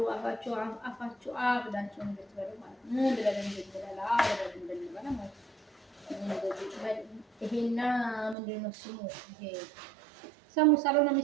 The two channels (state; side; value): drops out; left; at 8.3 s